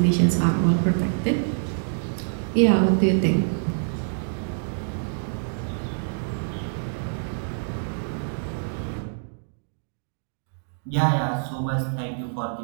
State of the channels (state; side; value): silent; left; digital silence